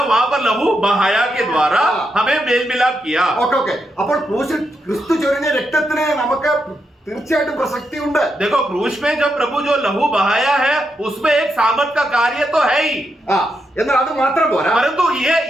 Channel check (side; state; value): both; normal; correlation 0.83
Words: वहां पर लहू बहाया के द्वारा हमें मेल मिलाप किया. ഓക്കെ. അപ്പോൾ ക്രൂശിൽ ക്രിസ്തു ചൊരിഞ്ഞ രക്തത്തിന് നമുക്ക് തീർച്ചയായിട്ടും പ്രസക്തി ഉണ്ട്. देखो क्रूस में जब प्रभु जो लहू बहाया है उसमें एक सामर्थ का कार्य तो है ही, എന്നാൽ അത് മാത്രം പോരാ. परंतु